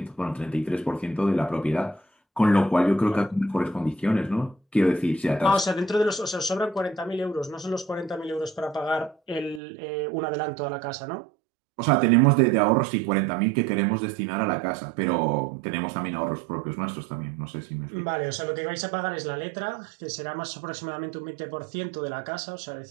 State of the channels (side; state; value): left; drops out; at 9.6 s